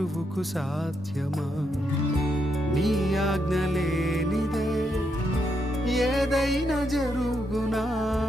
సాధ్యమా? నీ ఆజ్ఞ లేనిదే ఏదైనా జరుగునా,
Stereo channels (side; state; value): both; normal; correlation 0.80